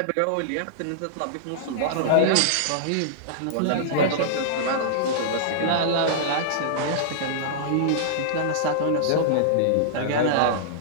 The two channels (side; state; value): both; different; correlation -0.02